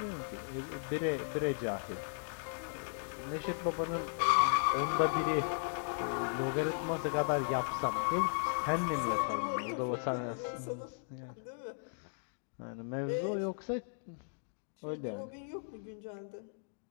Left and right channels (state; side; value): silent; right; digital silence